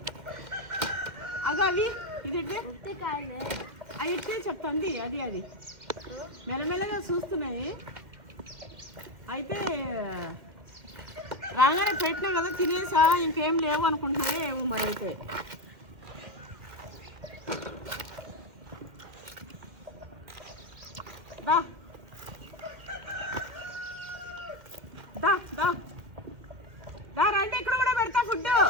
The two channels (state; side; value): late; left; 2.1 ms